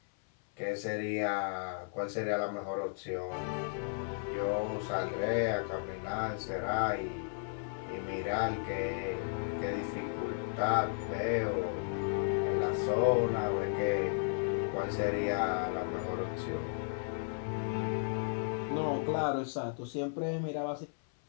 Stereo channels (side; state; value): right; silent; 55 dB below the other